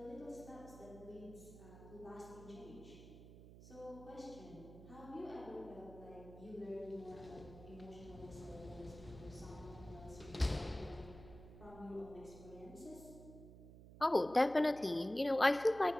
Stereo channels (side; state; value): right; noise; hum, 16 dB below the sound